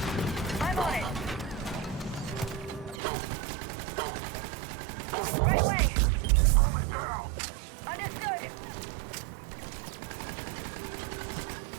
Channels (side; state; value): left; drops out; at 3.0 s